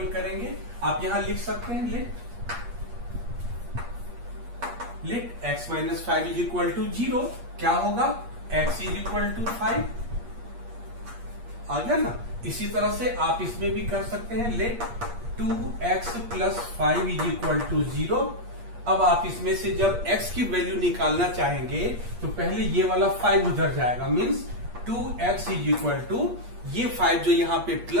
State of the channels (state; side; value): late; left; 8.5 ms